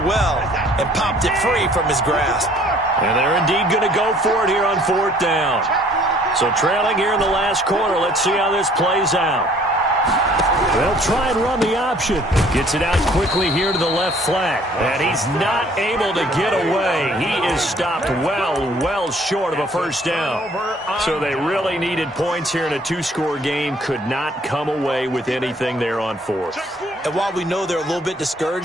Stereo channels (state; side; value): normal; both; correlation 0.57